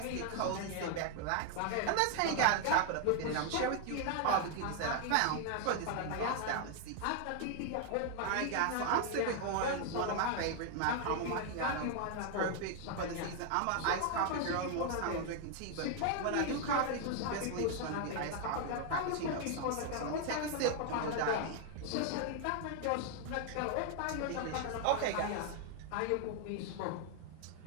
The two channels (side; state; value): both; different; correlation 0.00